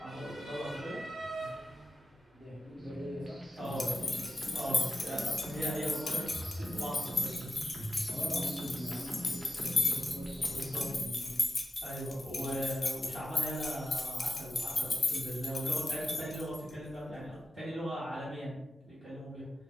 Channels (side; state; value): both; normal; correlation 0.89